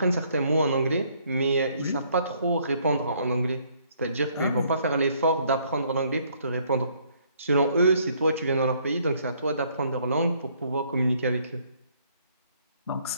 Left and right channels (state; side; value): inverted; both; correlation -0.66